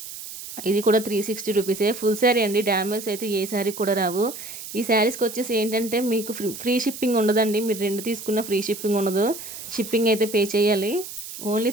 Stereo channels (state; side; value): noise; right; hiss, 11 dB below the sound